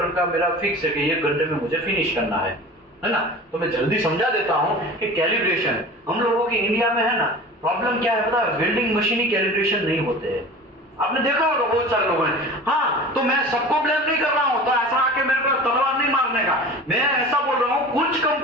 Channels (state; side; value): normal; both; correlation 0.37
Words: का मेरा फिक्स है कि 1 घंटे में मुझे फिनिश करना है ना। तो मैं जल्दी समझा देता हूँ कि कैलिब्रेशन हम लोगों की इंडिया में है ना, प्रॉब्लम क्या है पता है, वेल्डिंग मशीन ही कैलिब्रेशन नहीं होते हैं। आपने देखा होगा बहुत सारे लोगों ने, हाँ तो मैं सबको ब्लेम नहीं कर रहा हूं, तो ऐसा आके मेरे को तलवार नहीं मारने का, मैं ऐसा बोल रहा हूं कुछ